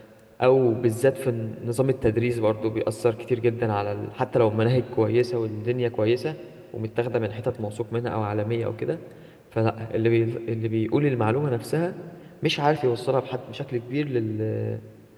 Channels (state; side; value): identical; both; correlation 1.00